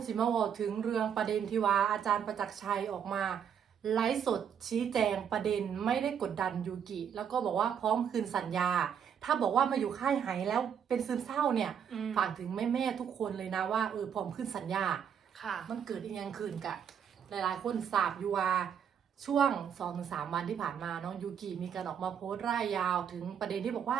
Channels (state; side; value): quieter; left; 8.1 dB